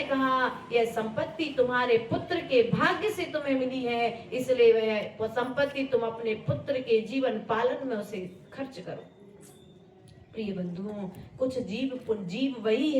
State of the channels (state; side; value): identical; both; correlation 1.00